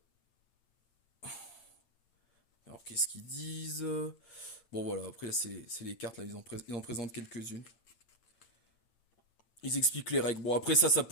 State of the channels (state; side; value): late; right; 8.9 ms